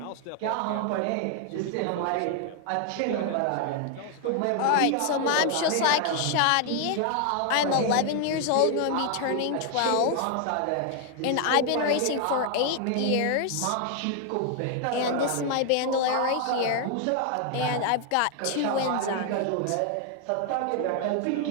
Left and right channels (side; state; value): both; different; correlation 0.00